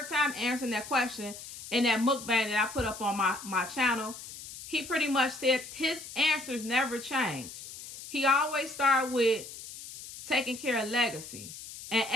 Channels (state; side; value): noise; left; hiss, 13 dB below the sound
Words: time answering that question in that mukbang that I put up on my channel. He pretty much said his answers never change. He always start with taking care of legacy. And